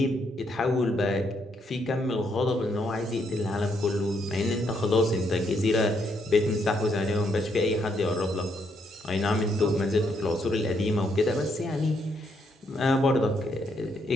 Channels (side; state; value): both; normal; correlation 0.75